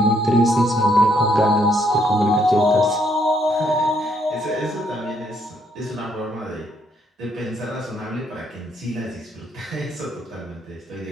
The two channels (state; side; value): normal; both; correlation 0.71